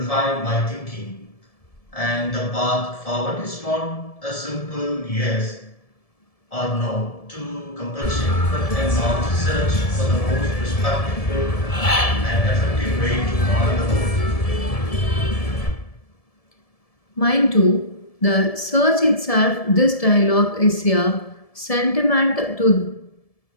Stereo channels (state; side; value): late; right; 1.7 ms